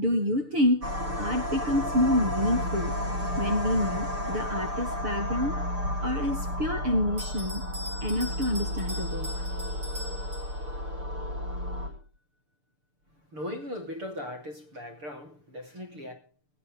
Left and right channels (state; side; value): late; left; 6.8 ms